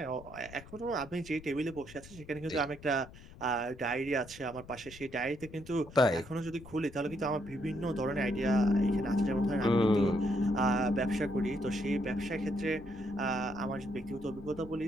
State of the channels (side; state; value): left; noise; rumble, 18 dB below the sound